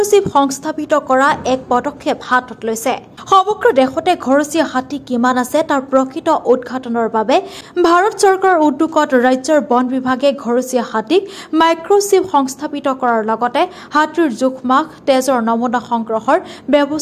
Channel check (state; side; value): identical; both; correlation 1.00